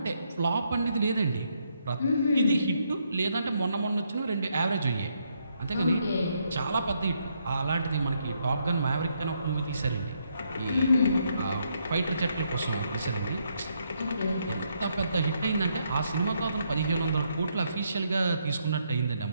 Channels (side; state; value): both; inverted; correlation -0.76